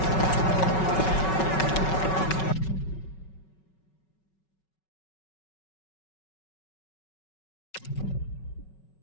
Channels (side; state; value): right; late; 5.4 ms